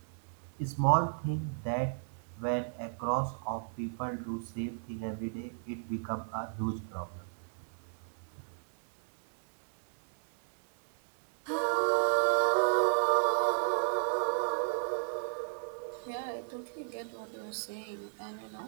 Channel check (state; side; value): silent; left; digital silence